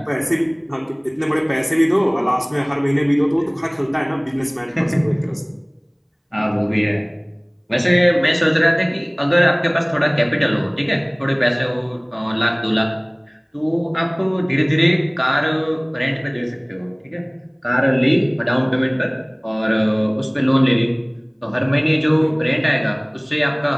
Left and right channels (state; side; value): identical; both; correlation 1.00